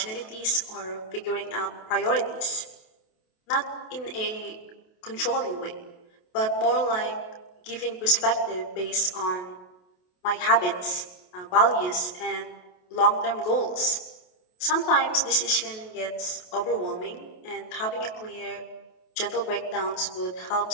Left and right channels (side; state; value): right; late; 28 ms